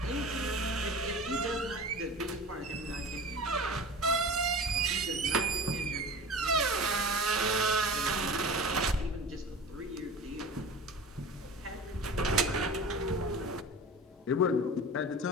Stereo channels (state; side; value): normal; both; correlation 0.35